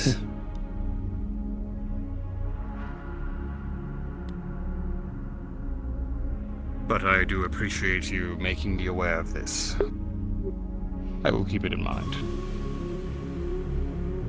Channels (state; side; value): identical; both; correlation 1.00